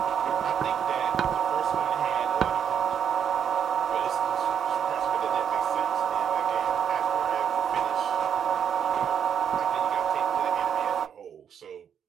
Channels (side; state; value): left; quieter; 8.2 dB